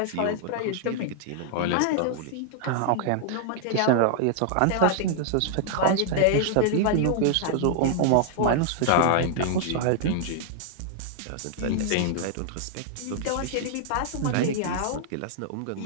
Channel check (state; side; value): different; both; correlation 0.00